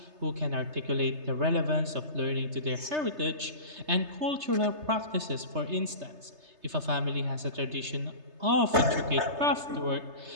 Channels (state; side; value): late; left; 3.3 ms